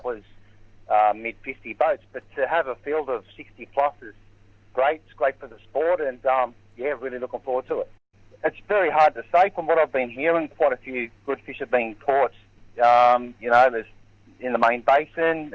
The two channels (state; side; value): identical; both; correlation 1.00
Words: was mid-50 boats. But to have a field of 60 plus is great. It's great for the sport, and really looking forward to it. It's very hard to say. From what I've been hearing, quite a few good fish are being caught. There's in the main basin,